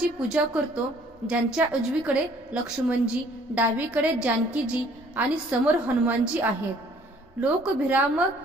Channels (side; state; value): both; normal; correlation 0.58